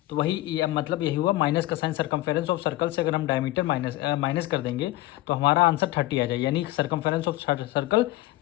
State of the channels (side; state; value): right; quieter; 17.5 dB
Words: तो वही मतलब यही हुआ, माइनस का साइन सर्कमफेरेंस ऑफ सर्कल से अगर हम डायमीटर माइनस कर देंगे तो हमारा आंसर 30 आ जाए, यानी सर्कमफेरेंस ऑफ सर्कल